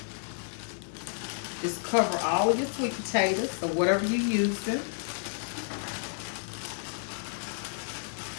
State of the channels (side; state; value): right; silent; digital silence